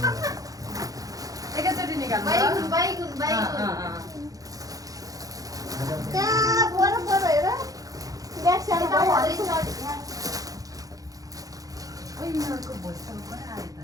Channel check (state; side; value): late; left; 0.17 ms